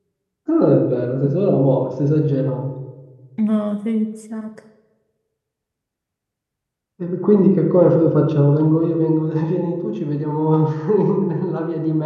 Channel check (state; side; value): identical; both; correlation 1.00